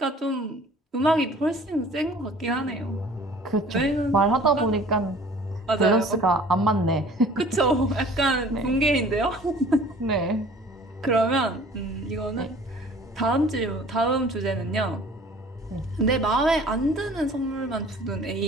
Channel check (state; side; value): normal; both; correlation 0.49